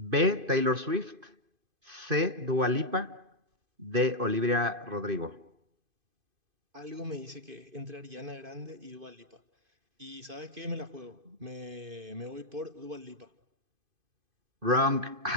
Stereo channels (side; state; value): left; late; 2.5 ms